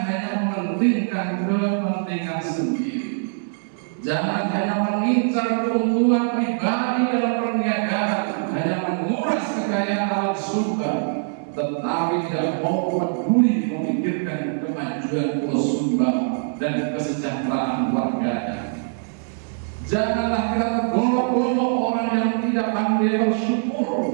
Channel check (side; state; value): left; silent; 60 dB below the other